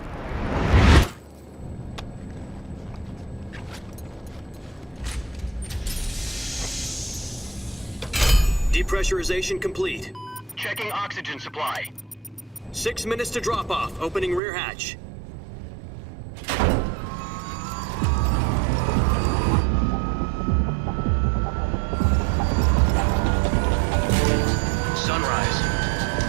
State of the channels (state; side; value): drops out; left; at 14.4 s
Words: Depressurization complete. Checking oxygen supply. 6 minutes to drop off. Opening rear hatch. Sunrise.